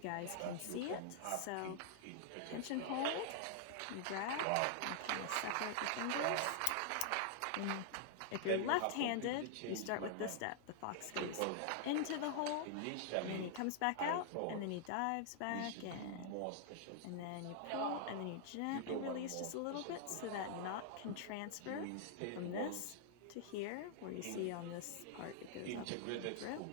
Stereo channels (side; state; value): both; different; correlation -0.01